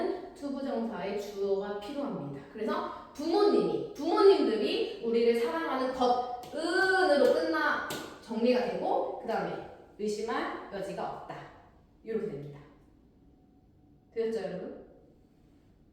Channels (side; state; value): both; identical; correlation 1.00